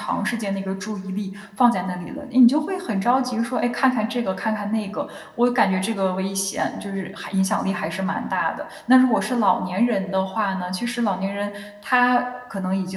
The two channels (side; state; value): both; identical; correlation 1.00